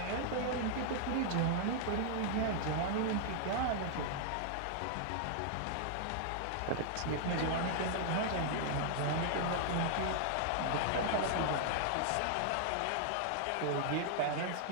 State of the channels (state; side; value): different; both; correlation -0.01